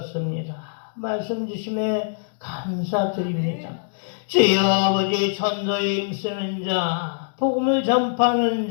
말씀 주심에 감사드립니다. 주여 아버지 전도에 힘쓰는 자, 복음을 전파하는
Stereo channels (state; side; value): silent; right; digital silence